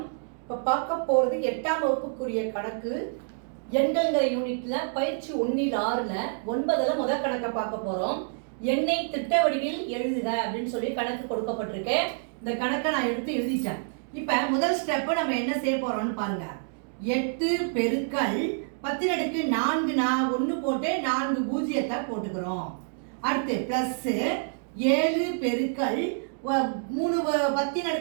இப்போ பார்க்க போகிறது 8ஆம் வகுப்புக்குரிய கணக்கு. எண்கள்ங்கிற யூனிட்ல பயிற்சி 1-6ல் 9ல் முதல் கணக்கை பார்க்க போகிறோம். எண்ணை திட்ட வடிவில் எழுதுக அப்படின்னு சொல்லி கணக்கு கொடுக்கப்பட்டிருக்கேன். இந்த கணக்கை நான் எடுத்து எழுதிட்டேன். இப்போ முதல் ஸ்டெப்பு நம்ம என்ன செய்ய போகிறோம்னு பாருங்க. 8 பெருக்கல் 10 4 நான் 1 போட்டு 4 பூஜ்ஜியத்தை போட்டுக்கிறோம். அடுத்து ப்ளஸ் 7 பெருக்கல் 3 10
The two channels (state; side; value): silent; left; digital silence